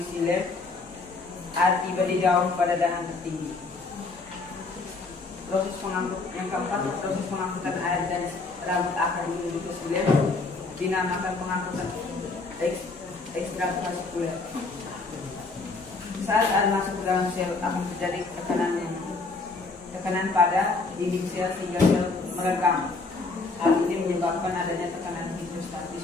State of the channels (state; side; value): quieter; right; 3.8 dB